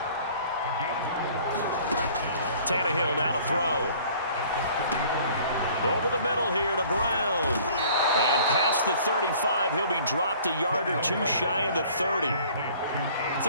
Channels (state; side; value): inverted; both; correlation -0.52